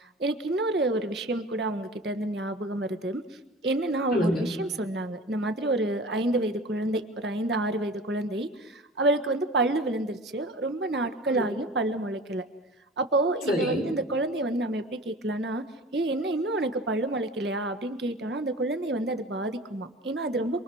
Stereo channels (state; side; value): normal; both; correlation 0.39